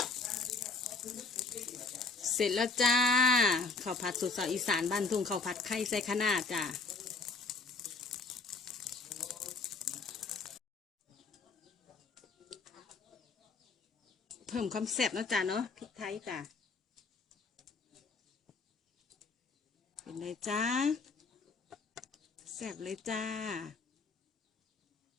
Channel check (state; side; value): quieter; right; 4.1 dB